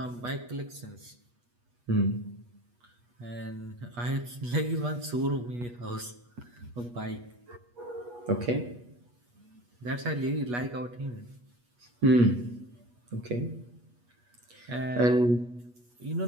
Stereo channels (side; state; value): left; late; 8.3 ms